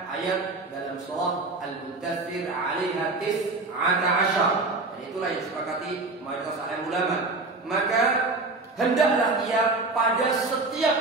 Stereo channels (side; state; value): left; quieter; 3.4 dB